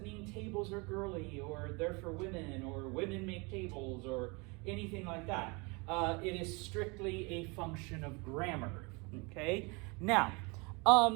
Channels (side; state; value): left; quieter; 28.7 dB